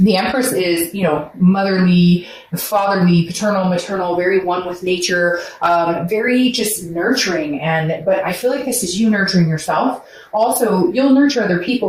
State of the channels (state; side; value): identical; both; correlation 1.00